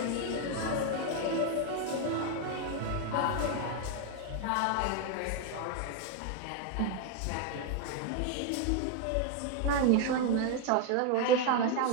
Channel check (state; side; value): different; both; correlation 0.01